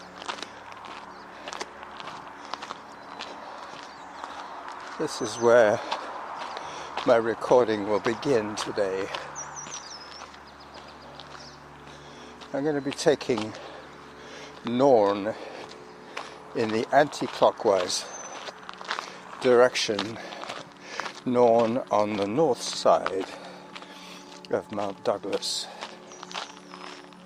This is where my recording will begin today. I'm going to be taking Norn in the anti-clockwise direction, Norn on the north side of Mount Douglas.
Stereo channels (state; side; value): identical; both; correlation 1.00